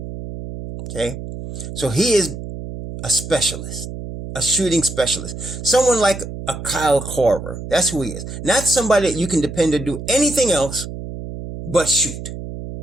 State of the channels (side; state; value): right; noise; hum, 9 dB below the sound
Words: Okay? So he is a specialist, a shooting specialist. Someone like a Kyle Korver. That's who he is. Not somebody that you can depend to do anything else but shoot.